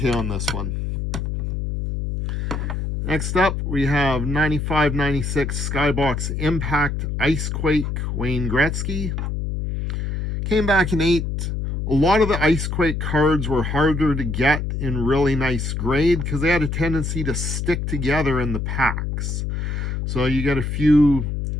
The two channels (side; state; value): left; noise; hum, 2 dB below the sound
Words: on this one. Next up, we have 95-96 Skybox Impact Icequake Wayne Gretzky. Came back in 8. A lot of the Icequake cards were harder to get in really nice grade because they had a tendency to stick together in the packs. So you get a few